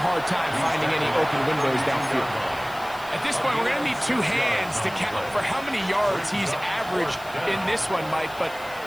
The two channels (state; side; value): noise; left; hiss, 20 dB below the sound